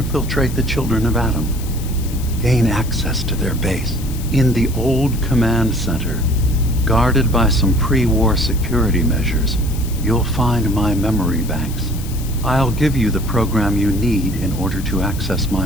the children of Adam. Gain access to their base. In the old command center, guarded by some pre-war security measures, you'll find my memory banks. I'll give you the program you need in order to access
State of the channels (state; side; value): noise; left; hiss, 15 dB below the sound